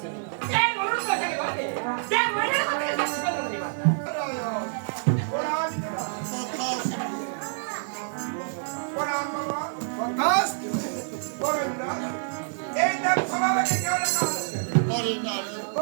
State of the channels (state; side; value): silent; left; 60 dB below the other